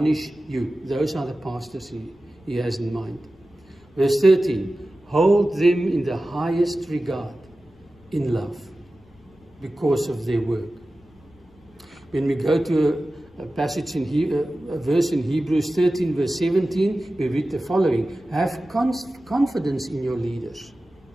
you. Those are the pastors he has in mind. Verse 13, hold them in the highest regard, in love, because of their work. When we go to a passage a verse in Hebrews 13, verse 17, we read the following. Have confidence in your leaders.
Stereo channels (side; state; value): left; noise; rumble, 28 dB below the sound